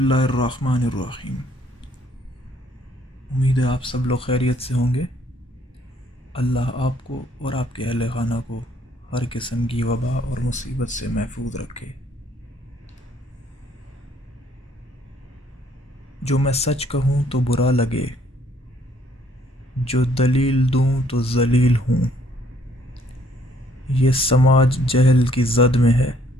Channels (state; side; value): normal; both; correlation 0.65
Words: الرحمن الرحیم۔ امید ہے آپ سب لوگ خیریت سے ہوں گے۔ اللہ آپ کو اور آپ کے اہل خانہ کو ہر قسم کی وبا اور مصیبت سے محفوظ رکھے۔ جو میں سچ کہوں تو برا لگے، جو دلیل دوں تو ذلیل ہوں، یہ سماج جہل کی زد میں ہے،